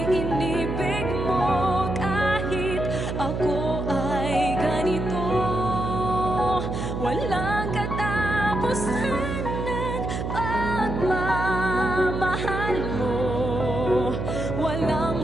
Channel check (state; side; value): noise; right; hum, 3 dB below the sound